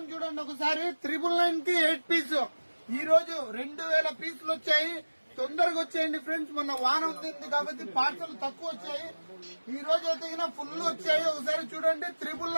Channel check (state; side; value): inverted; both; correlation -1.00